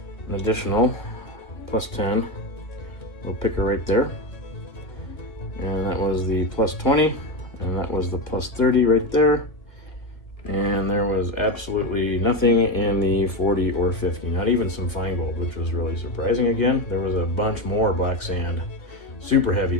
an additional plus 10. Little picker right there. And that was the plus 20. And that was the plus 30 right there. And there was absolutely nothing in the 40 or 50, not even some fine gold, which was really surprising. Again, there was a bunch more black sand, super heavy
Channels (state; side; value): late; right; 1.9 ms